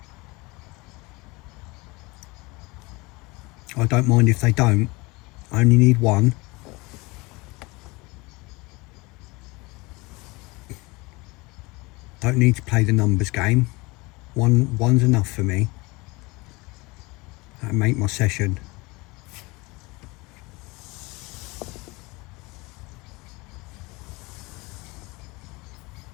I don't mind if they don't. I only need one. Don't need to play the numbers game. One's enough for me. That'll make my session.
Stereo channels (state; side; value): quieter; right; 24.4 dB